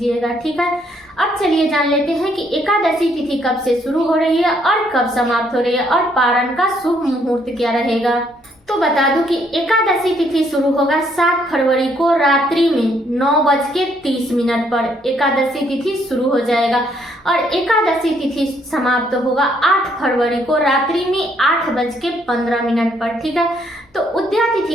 ठीक है। अब चलिए जान लेते हैं कि एकादशी तिथि कब से शुरू हो रही है और कब समाप्त हो रही है और पारण का शुभ मुहूर्त क्या रहेगा। तो बता दूं कि एकादशी तिथि शुरू होगा 7 फरवरी को रात्रि में 9:30 पर एकादशी तिथि शुरू हो जाएगा और एकादशी तिथि समाप्त होगा 8 फरवरी को रात्रि में 8:15 पर, ठीक है। तो उदया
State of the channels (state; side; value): normal; both; correlation 0.69